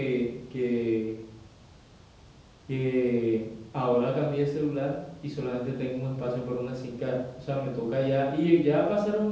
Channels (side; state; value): both; identical; correlation 1.00